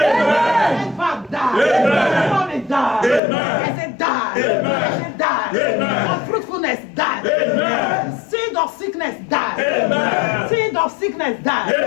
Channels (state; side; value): drops out; right; at 3.2 s